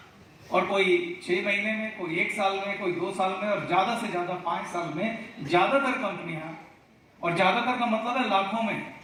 और कोई 6 महीने में, कोई 1 साल में, कोई 2 साल में, और ज्यादा से ज्यादा 5 साल में ज्यादातर कंपनियां, और ज्यादातर का मतलब है लाखों में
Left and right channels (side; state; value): both; identical; correlation 1.00